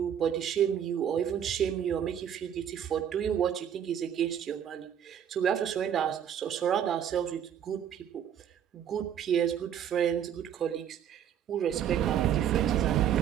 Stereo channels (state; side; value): quieter; left; 9.3 dB